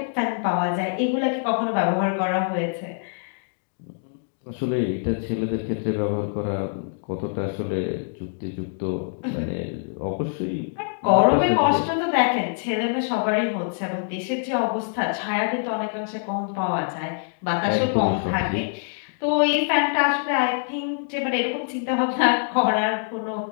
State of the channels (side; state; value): right; silent; digital silence